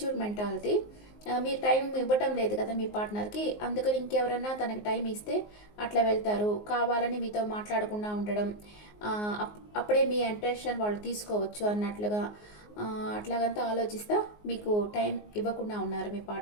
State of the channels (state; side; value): late; right; 19 ms